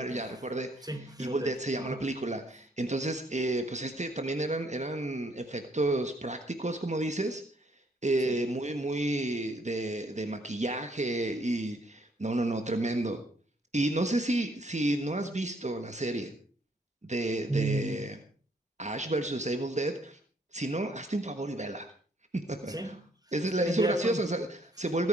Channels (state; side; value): normal; both; correlation 0.67